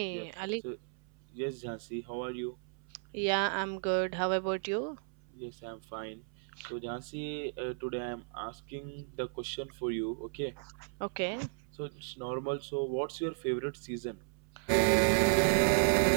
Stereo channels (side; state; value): left; silent; 55 dB below the other